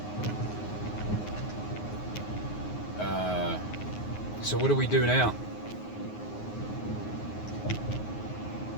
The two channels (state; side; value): late; right; 9.5 ms